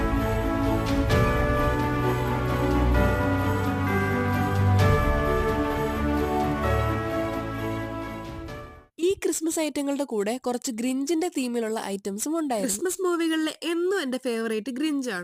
ഈ ക്രിസ്മസ് ഐറ്റങ്ങളുടെ കൂടെ കുറച്ച് ഗ്രിഞ്ചിന്റെ തീമിലുള്ള ഐറ്റംസും ഉണ്ടായിരുന്നു. ക്രിസ്മസ് മൂവികളിലെ എന്നും എന്റെ ഫേവറേറ്റ്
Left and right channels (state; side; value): identical; both; correlation 1.00